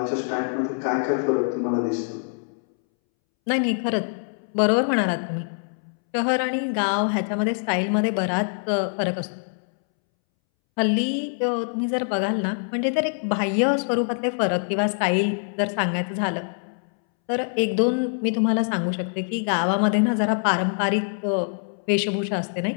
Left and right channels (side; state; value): right; silent; 62 dB below the other